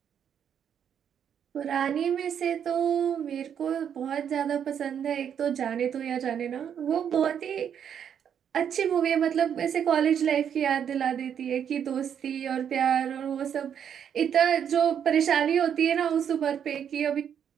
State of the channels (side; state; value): left; quieter; 8.5 dB